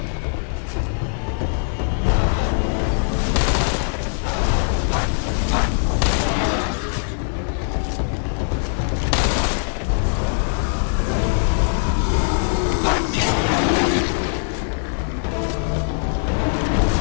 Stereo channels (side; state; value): right; silent; 65 dB below the other